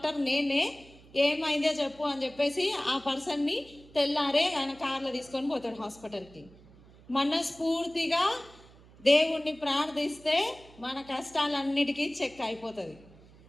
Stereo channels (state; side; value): noise; right; hum, 24 dB below the sound